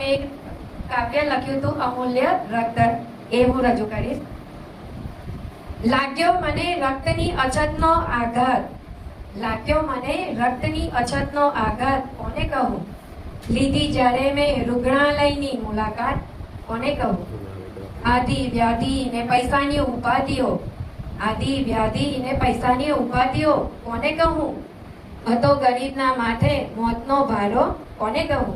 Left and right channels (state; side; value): identical; both; correlation 1.00